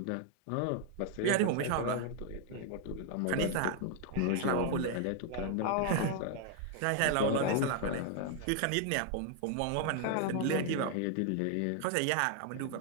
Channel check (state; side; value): different; both; correlation 0.00